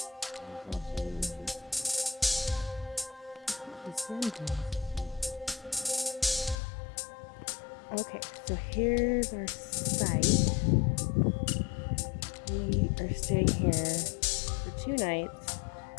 Okay, so here's our site. We are staying here for 2 nights.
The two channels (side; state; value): right; drops out; at 6.6 s